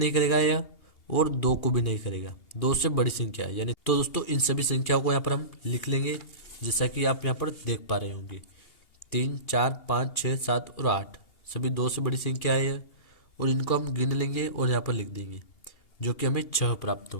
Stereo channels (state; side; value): late; right; 2.8 ms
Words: करेगा या और 2 को भी नहीं करेगा, 2 से बड़ी संख्या है यानी। तो दोस्तों इन सभी संख्याओं को यहाँ पर हम लिख लेंगे जैसा कि आप यहाँ पर देख पा रहे होंगे। 3, 4, 5, 6, 7 और 8 सभी 2 से बड़ी संख्या है और इनको हम गिन लेंगे और यहाँ पर लिख देंगे जो कि हमें 6 प्राप्त